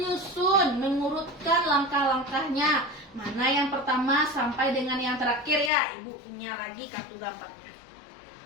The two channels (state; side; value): drops out; right; at 5.7 s